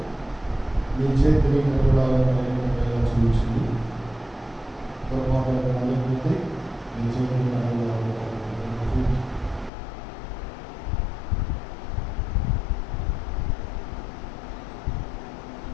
మీ చేతిని చూపించింది. పొరపాటు అందరికీ మీ చేతిని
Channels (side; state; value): right; drops out; at 9.7 s